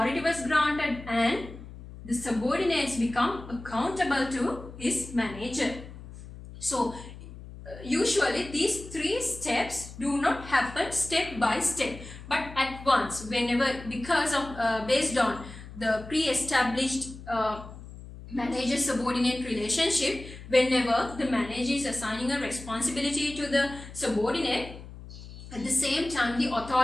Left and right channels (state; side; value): noise; left; hum, 15 dB below the sound